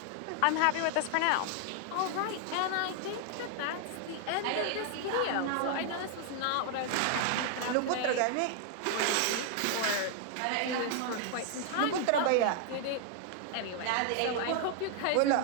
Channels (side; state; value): both; different; correlation 0.00